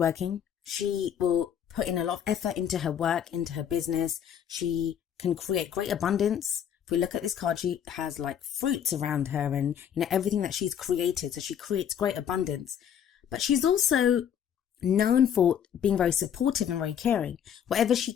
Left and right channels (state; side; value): quieter; right; 9.0 dB